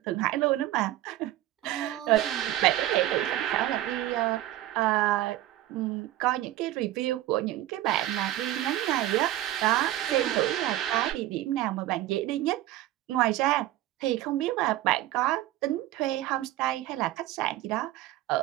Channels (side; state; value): left; quieter; 14.7 dB